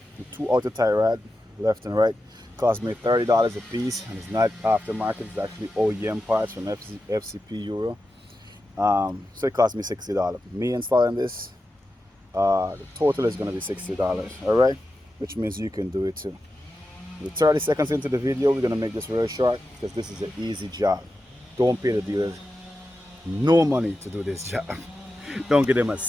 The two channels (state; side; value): normal; both; correlation 0.91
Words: outer tie rod, left and right, cost me $30 a piece, and it's not aftermarket. It's actually OEM parts from FCP Euro. So it cost me $60. Me installing this, the total is going to be $60. All right, which means you can do it too. We're 30 seconds into the video. We're going to make this real short because this is an easy job. Don't pay the dealers no money to do this job. Don't give them a